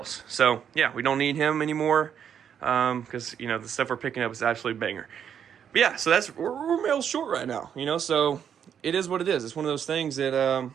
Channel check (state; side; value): quieter; left; 8.4 dB